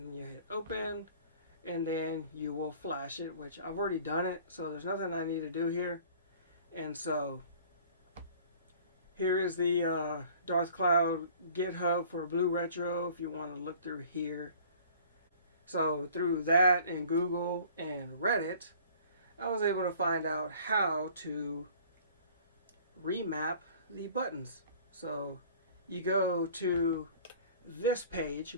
then you hit open, and then you will flash it, which I've already done it, so there's nothing I need to do here. And so here is the Darth Cloud GitHub for BlueRetro if you want to look through here. So through that and Google and Reddit, I was able to find out how to remap the buttons. So you go to this page,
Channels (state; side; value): inverted; both; correlation -0.50